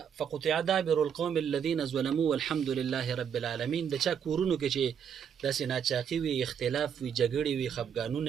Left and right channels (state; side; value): quieter; left; 7.9 dB